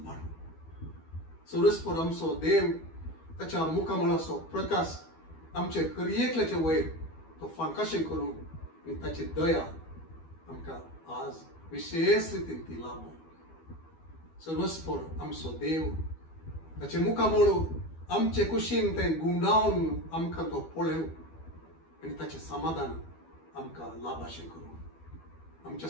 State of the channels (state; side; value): late; right; 12 ms